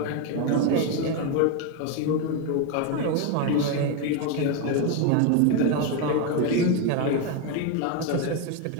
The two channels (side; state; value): both; different; correlation 0.02